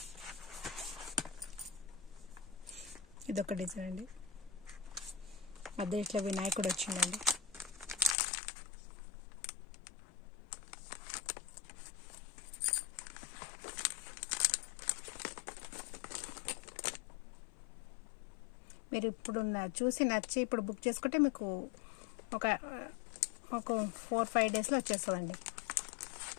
ఇదొక డిజైన్ అండి. మధ్య ఇట్లా వినాయకుడు వచ్చిందండి. మీరు ఇప్పుడు చూసి నచ్చి ఇప్పుడు బుక్ చేసుకుంటే మీకు ఒక 4-5 డేస్లో వచ్చేస్తుందండి.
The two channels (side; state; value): right; drops out; at 8.2 s